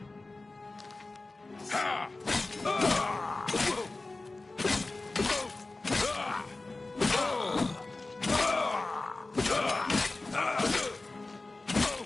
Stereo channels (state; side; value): quieter; right; 3.2 dB